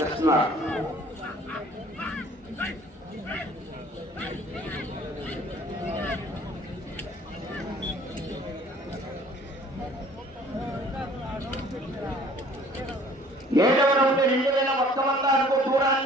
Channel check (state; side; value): normal; both; correlation 0.53